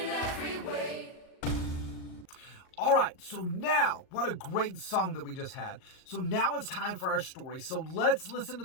every way. All right, so now, what a great song that we just had. So now it's time for our story. So let's listen to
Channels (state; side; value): late; right; 38 ms